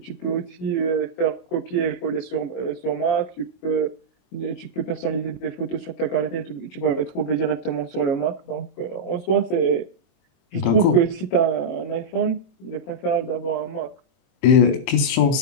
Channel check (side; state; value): right; late; 23 ms